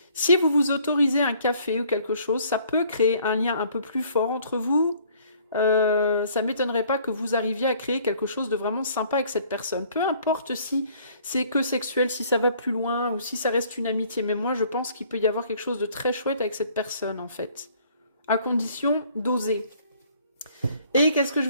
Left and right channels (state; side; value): inverted; both; correlation -0.59